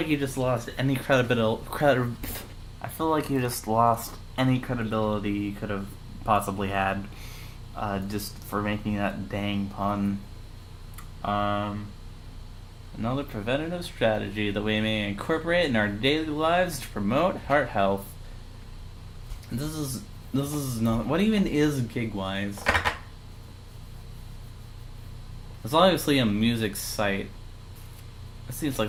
you just lost any credibility you could have possibly had, just for making that dang pun. Another preventative strategy that we may incorporate in our daily lives to promote heart health. This is not. What even is Gigwise? It's obviously a music site. It seems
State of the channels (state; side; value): identical; both; correlation 1.00